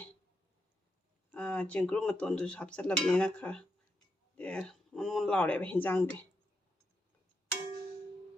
ꯆꯦꯡꯀ꯭ꯔꯨ ꯃꯇꯣꯟꯗꯨꯁꯨ ꯍꯥꯞꯆꯤꯜꯂꯕꯅꯤꯅ ꯈꯔ ꯃꯣꯟ ꯂꯥꯎꯔꯦꯕ ꯍꯤꯟꯖꯥꯡꯗꯤ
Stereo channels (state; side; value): normal; both; correlation 0.83